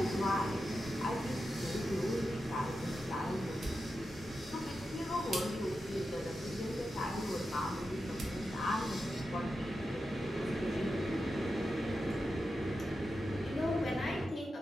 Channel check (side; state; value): both; normal; correlation 0.90